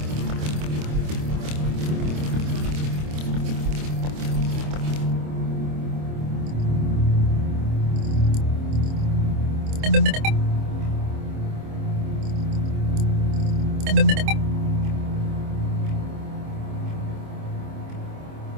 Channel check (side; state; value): left; late; 26 ms